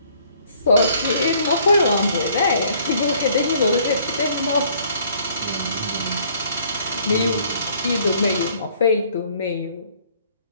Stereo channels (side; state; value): both; inverted; correlation -0.60